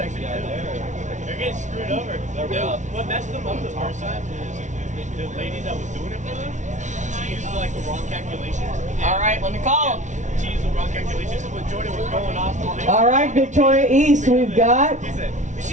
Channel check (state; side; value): late; left; 0.36 ms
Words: 2. They're getting screwed over. What messed them up the first time is the lady that was doing it for them, she used like the wrong calculations. All right, let me call them. She used the wrong calculations, so when Jordan was going off. All right, Victoria East, we've got. She's